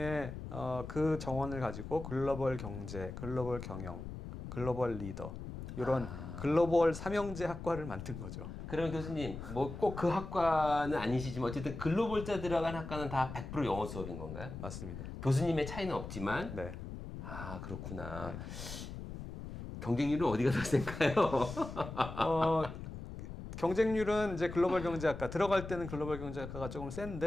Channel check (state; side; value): noise; left; rumble, 9 dB below the sound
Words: 그 정원을 가지고 글로벌 경제, 글로벌 경영, 글로벌 리더 이런 글로벌 삼형제 학과를 만든 거죠. 그럼 교수님, 뭐 꼭 그 학과는 아니시지만 어쨌든 글로벌자 들어간 학과는 다 100% 영어 수업인 건가요? 맞습니다. 교수님의 차이는 없지만, 네. 아, 그렇구나. 네. 경쟁률은 어디가 더 센가요? 어, 경쟁률은 이제 글로벌 경제학과 들어갈 때는 글로벌 경제학과가 조금